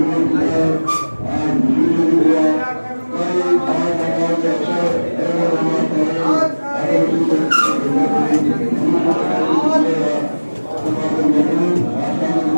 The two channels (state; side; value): inverted; both; correlation -1.00